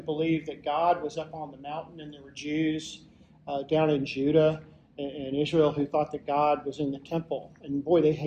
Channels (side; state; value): both; identical; correlation 1.00